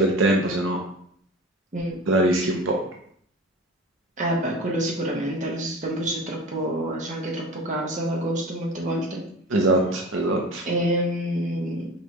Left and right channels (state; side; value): normal; both; correlation 0.35